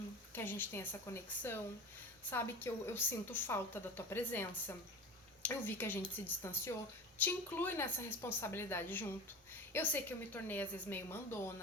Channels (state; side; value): normal; both; correlation 0.30